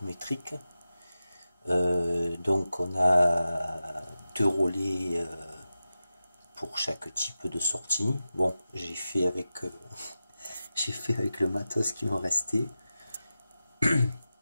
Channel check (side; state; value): both; inverted; correlation -0.93